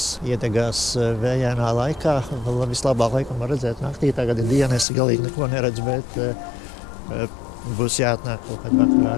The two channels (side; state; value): right; drops out; at 4.9 s